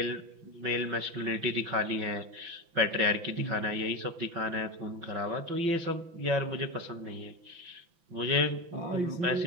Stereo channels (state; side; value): late; left; 5.9 ms